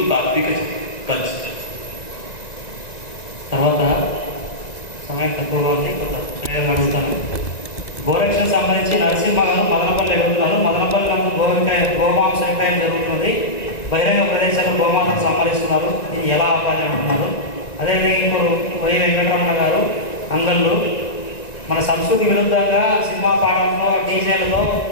తాత్విక కల్చర్. తర్వాత సమయం తక్కువగా ఉంది, కొంత ప్రయోగం అడుగుతాను. గోరక్షకు సంబంధించి నరసింహ గారు మదనపల్లి అడుగుతున్నారు. మదనపల్లి గోమాంస విక్రయం జరుగుతుంది, బహిరంగ ప్రదేశాల్లో గోమాతను సంహరిస్తున్నారు, ఇది ఎలా ఆపాలి అంటున్నారు. అదేవిధంగా ఇప్పుడు వై వెంకటరమణ గారు అంగళ్ళు, మన సంస్కృతి విరుద్ధంగా సినిమా పాటలతో డీజేలతో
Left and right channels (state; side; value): late; right; 1.9 ms